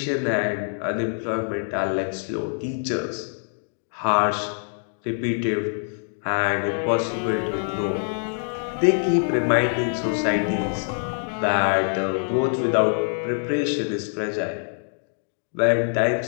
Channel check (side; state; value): right; silent; 62 dB below the other